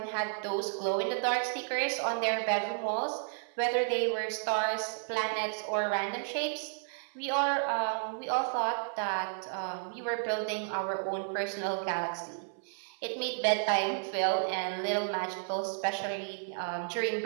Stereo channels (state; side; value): silent; left; 56 dB below the other